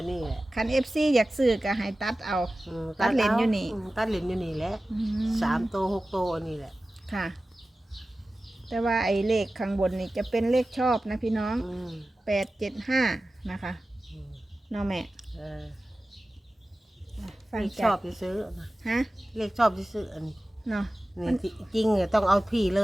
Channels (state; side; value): normal; both; correlation 0.96